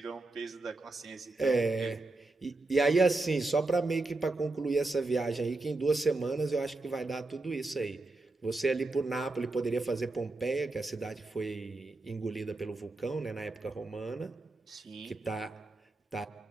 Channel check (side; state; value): left; quieter; 3.1 dB